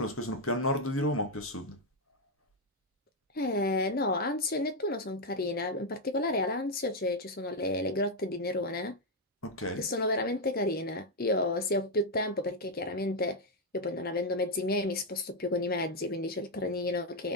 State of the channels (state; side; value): normal; both; correlation 0.02